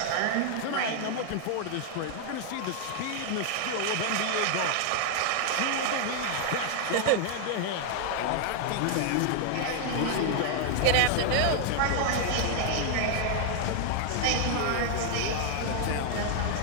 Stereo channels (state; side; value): different; both; correlation 0.00